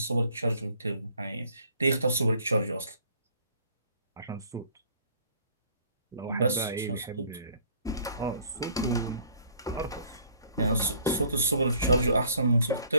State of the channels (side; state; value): both; inverted; correlation -0.58